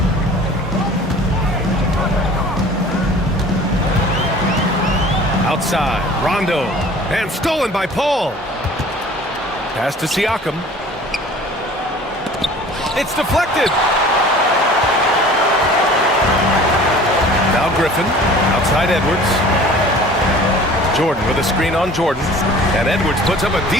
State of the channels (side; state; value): both; normal; correlation 0.46